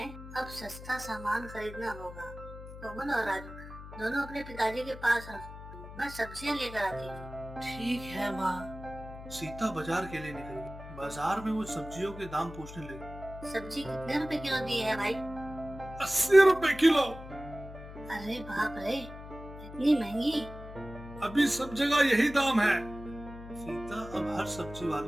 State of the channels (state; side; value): noise; left; hum, 14 dB below the sound